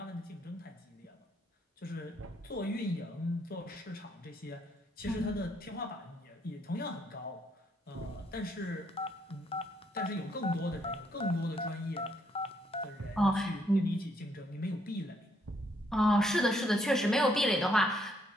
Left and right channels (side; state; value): both; normal; correlation 0.71